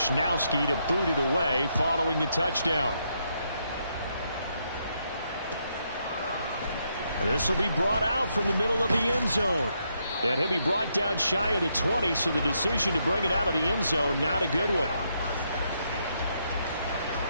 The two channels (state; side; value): inverted; both; correlation -0.78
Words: to boot it away following the touchdown. And this will be brought out from the middle of the end zone. And he'll be brought down shy of the 20, so the decision to bring it out of the end zone, not a good one.